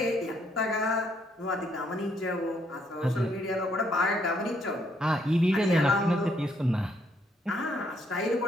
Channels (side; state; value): both; normal; correlation 0.71